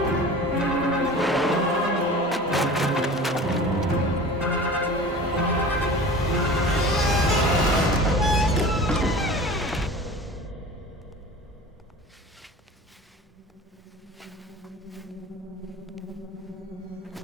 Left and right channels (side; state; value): both; normal; correlation 0.38